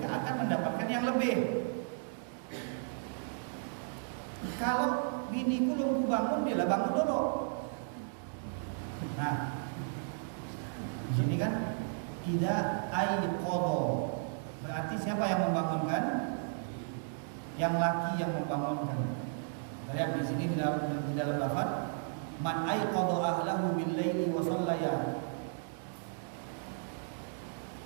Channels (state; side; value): silent; left; digital silence